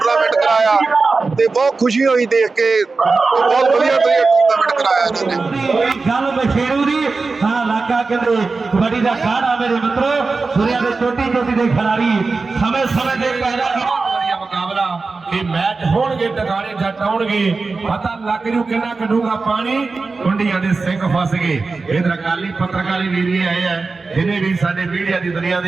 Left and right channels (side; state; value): left; quieter; 4.1 dB